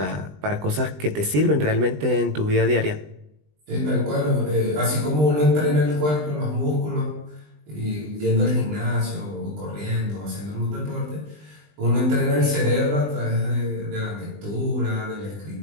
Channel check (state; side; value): late; left; 20 ms